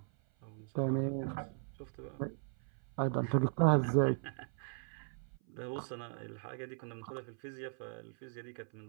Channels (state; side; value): silent; left; 52 dB below the other